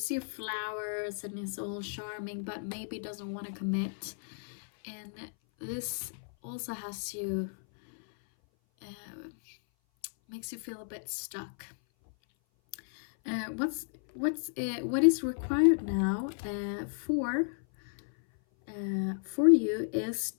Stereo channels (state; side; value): silent; right; 56 dB below the other